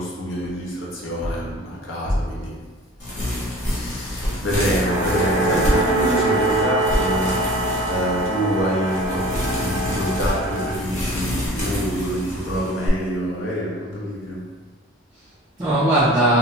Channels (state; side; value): normal; both; correlation 0.44